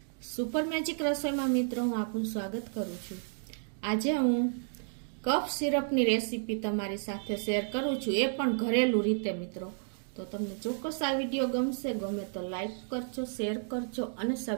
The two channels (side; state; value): left; silent; digital silence